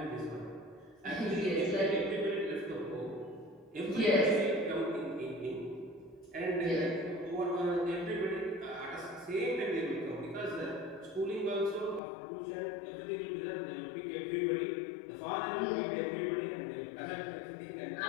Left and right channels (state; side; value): drops out; right; at 12.0 s